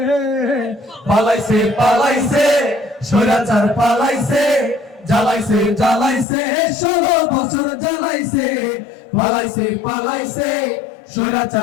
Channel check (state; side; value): drops out; right; at 6.2 s